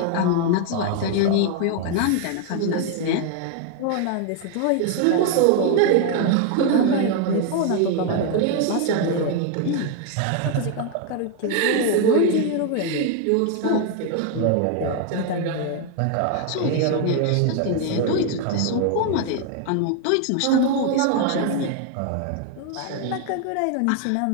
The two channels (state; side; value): different; both; correlation 0.01